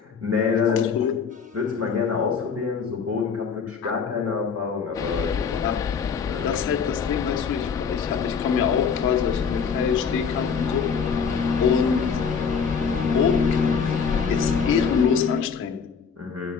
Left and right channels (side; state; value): right; quieter; 6.1 dB